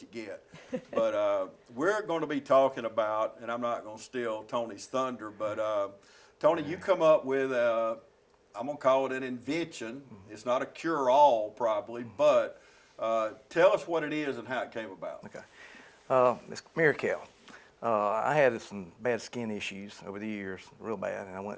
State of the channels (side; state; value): both; identical; correlation 1.00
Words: get. But we're going to be talking about, and I'm not going to steal Tony's thunder, but Tony, you come up with, I'm going to call it an invention. It's not a cure-all probably, but tell us what it is and how it came about. Okay. It's Mirakel. I had some bad skin issues over the years, real bad, and I